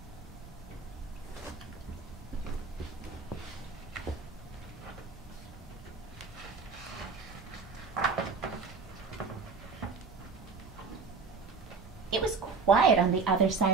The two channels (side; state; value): left; quieter; 4.8 dB